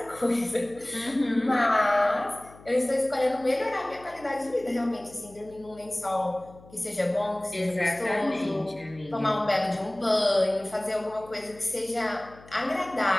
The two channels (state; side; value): noise; left; hum, 22 dB below the sound